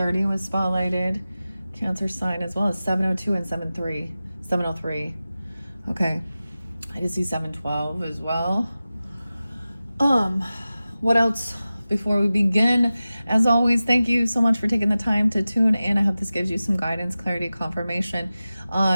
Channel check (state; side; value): inverted; both; correlation -0.95